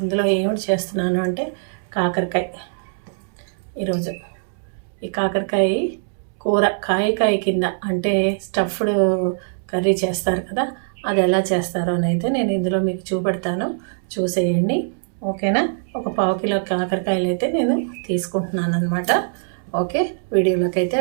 ఇందులో ఏమిటి చేస్తున్నాను అంటే కాకరకాయ. ఈరోజు ఈ కాకరకాయ కూర కాయ కింద అంటే స్టఫ్డ్ కర్రీ చేస్తారు కదా, అది ఎలా చేస్తారో అని అయితే నేను ఇందులో మీకు చూపెడతాను, చూసేయండి. ఓకేనా? ఒక 1/2 కిలో కాకరకాయలు అయితే నేను తీసుకుంటున్నాను అనమాట. ఓకే, వీడియోలోకి అయితే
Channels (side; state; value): left; silent; 64 dB below the other